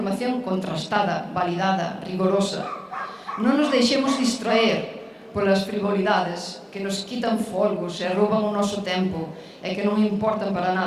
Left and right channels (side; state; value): both; identical; correlation 1.00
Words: contrastada, validada, rigorosa. Non nos deixemos distraer polas frivolidades que nos quitan folgos e rouban o noso tempo e que non importan para